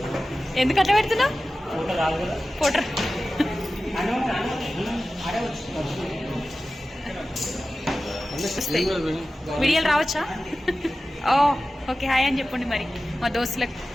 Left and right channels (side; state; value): both; normal; correlation 0.95